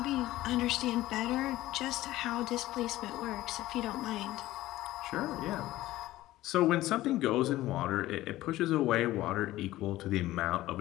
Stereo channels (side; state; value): right; quieter; 16.1 dB